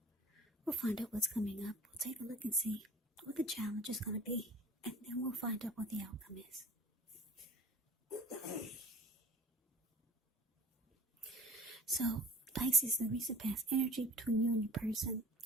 We'll find out what's coming up. We'll take a look and see what the challenge is going to be, and then we'll find out what the outcome is. So, Pisces, the recent past energy between you and your person.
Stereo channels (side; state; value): both; normal; correlation 0.44